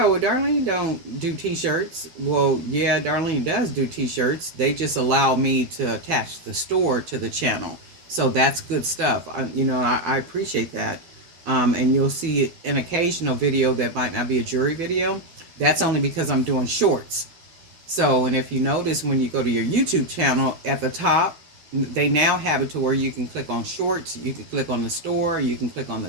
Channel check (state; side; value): late; left; 12 ms